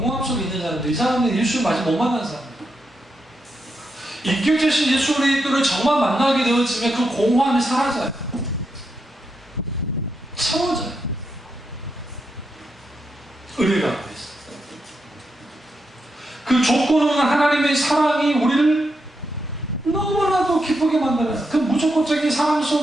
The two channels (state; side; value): normal; both; correlation 0.83